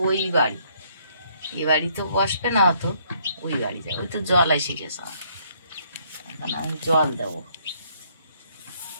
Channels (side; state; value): both; inverted; correlation -0.67